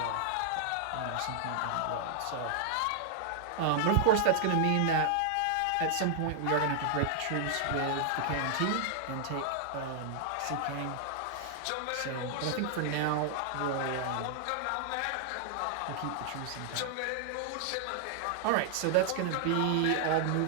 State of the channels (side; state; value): both; different; correlation 0.00